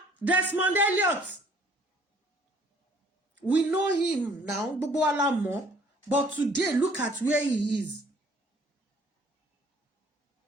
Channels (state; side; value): normal; both; correlation 0.58